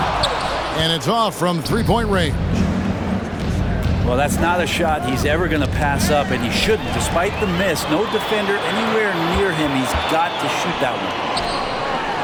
And it's off from 3-point range. Well, that's not a shot he's ever going to pass up, and he shouldn't. Despite the miss, no defender anywhere near him. He's got to shoot that one.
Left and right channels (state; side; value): identical; both; correlation 1.00